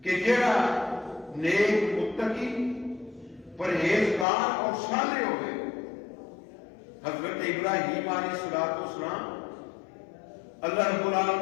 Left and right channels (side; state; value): right; drops out; at 4.2 s